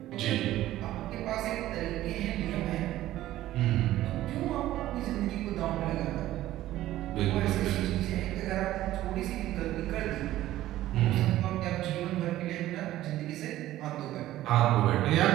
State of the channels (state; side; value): quieter; left; 14.6 dB